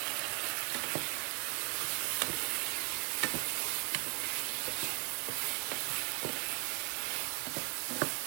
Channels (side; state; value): left; quieter; 29.9 dB